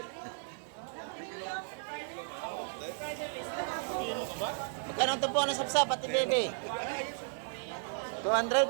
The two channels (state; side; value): silent; left; digital silence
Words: Magkano ang tumpukan ng sap-sap, pati baby?